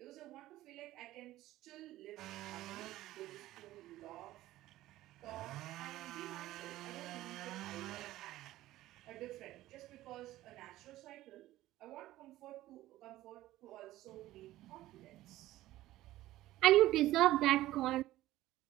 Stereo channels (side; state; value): left; quieter; 15.7 dB